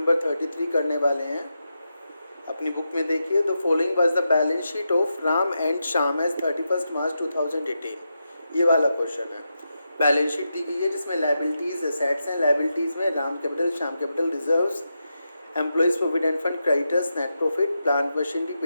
33 करने वाले हैं। अपनी बुक में देखिए, the following was the balance sheet of Ram and Shyam as 31 March 2018। ये वाला क्वेश्चन है। बैलेंस शीट दी गई है जिसमें लाइबिलिटीज़ एसेट्स हैं। लाइबिलिटीज़ में Ram capital, Shyam capital, reserves, employees provident fund, creditors, net profit, plant machinery,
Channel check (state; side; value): inverted; both; correlation -0.87